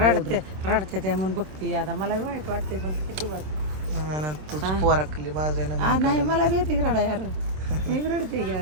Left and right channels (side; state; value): left; late; 26 ms